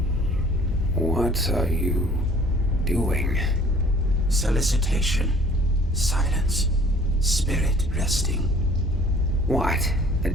What are you doing? Solicitation. Silence. Spirit resting. What? The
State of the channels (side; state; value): both; normal; correlation 0.53